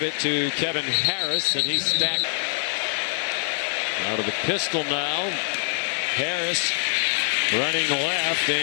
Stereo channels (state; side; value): silent; right; digital silence